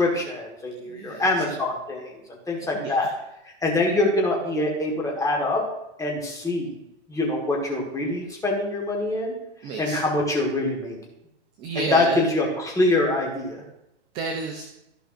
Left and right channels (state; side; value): normal; both; correlation 0.38